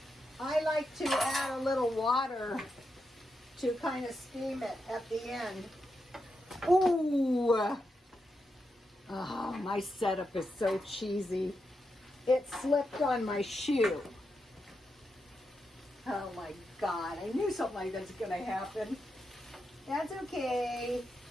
I like to add a little water to kind of steam it at the end. Ooh! Oh, my setup is so cheesy. It slipped on my shoe. Oh my God, I knew something like that's going to happen. That's okay.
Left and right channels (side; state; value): both; normal; correlation 0.86